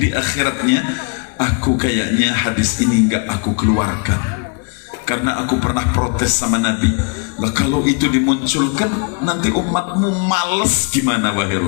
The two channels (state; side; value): quieter; right; 36.8 dB